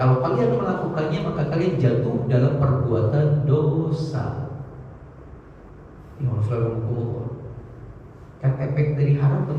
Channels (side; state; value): both; identical; correlation 1.00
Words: kalau kalian melakukannya maka kalian jatuh dalam perbuatan dosa. Kan efek dari haram